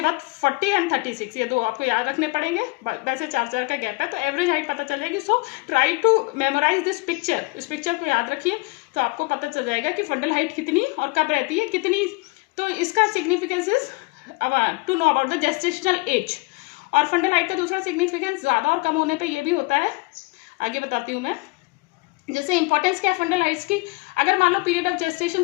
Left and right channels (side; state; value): right; quieter; 25.5 dB